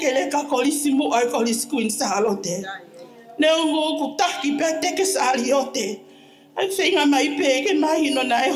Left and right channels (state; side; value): identical; both; correlation 1.00